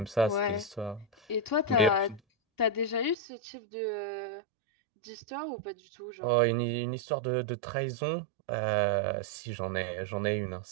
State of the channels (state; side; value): drops out; left; at 3.2 s